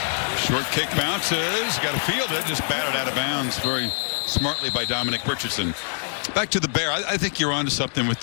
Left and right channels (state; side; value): silent; right; digital silence